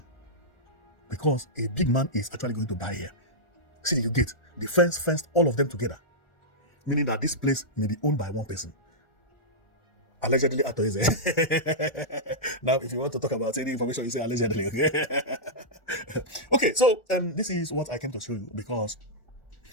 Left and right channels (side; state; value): right; late; 1.4 ms